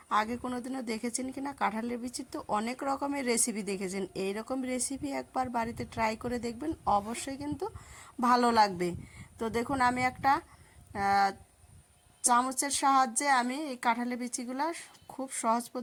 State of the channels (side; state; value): both; identical; correlation 1.00